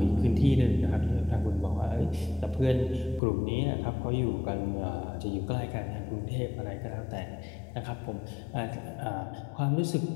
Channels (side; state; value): right; drops out; at 3.2 s